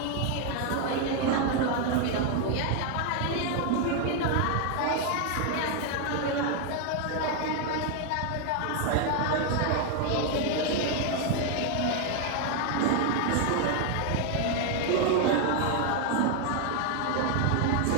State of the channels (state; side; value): different; both; correlation 0.01